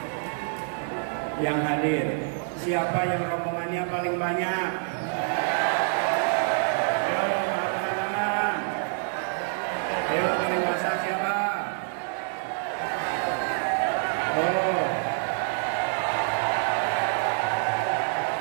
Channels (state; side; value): silent; left; 60 dB below the other